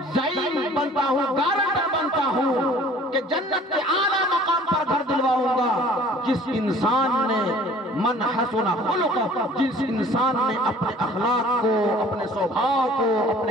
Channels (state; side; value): normal; both; correlation 0.51